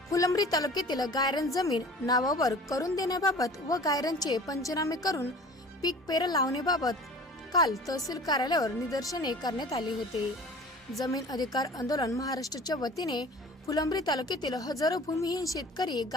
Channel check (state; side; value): normal; both; correlation 0.43